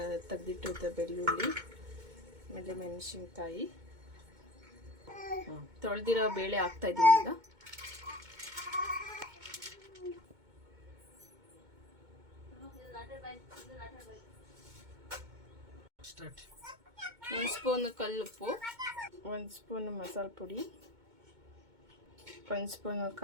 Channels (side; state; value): left; late; 2.2 ms